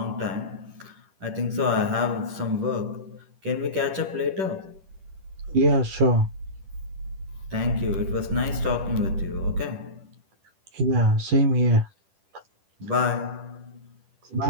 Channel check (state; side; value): late; left; 10 ms